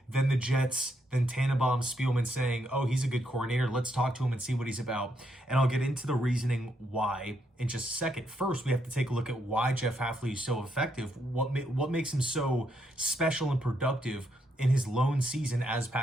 than the Jets, than Tannenbaum, Spielman saying, oh, he's a good coordinator. Let's talk to him and see what he's about. And I'll get into the reasoning why in just a second. First, we have to take a look at why Jeff Hafley is so effective. What makes him so special and productive in his lone season as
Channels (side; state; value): both; normal; correlation 0.77